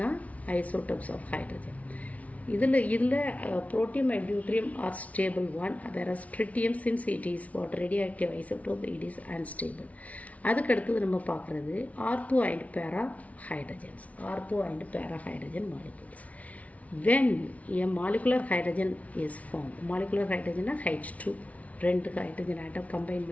ஐசோடோப்ஸ் ஆஃப் ஹைட்ரஜன். இதில் protium and deuterium are stable one, whereas tritium since it is what? radioactive isotope, it is unstable. அதுக்கு அடுத்தது நம்ம பார்க்குறது ஆர்த்தோ அண்ட் பேரா hydrogens. Ortho and para hydrogen molecules. when a molecular hydrogen is formed, molecular hydrogen H2, 2 hydrogen atom combine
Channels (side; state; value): right; late; 0.068 ms